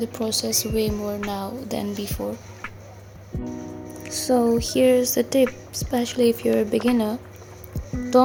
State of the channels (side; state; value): both; identical; correlation 1.00